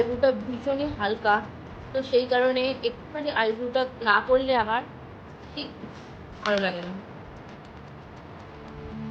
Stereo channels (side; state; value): both; identical; correlation 1.00